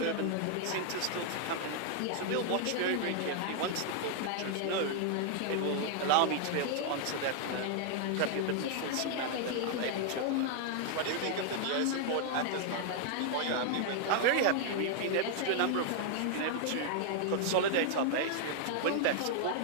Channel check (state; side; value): different; both; correlation 0.00